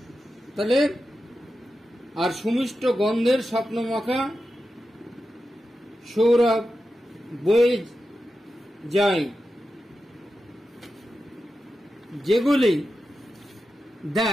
তাহলে আর সুমিষ্ট গন্ধের স্বপ্নমাখা সৌরভ বয়ে যায়, যেগুলি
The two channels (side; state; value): both; normal; correlation 0.91